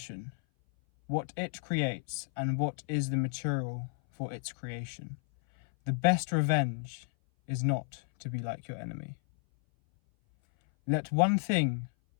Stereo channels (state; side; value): silent; right; 56 dB below the other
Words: what it creates and what is the material for its creation. The best revenge is not to be like your enemy. Let one thing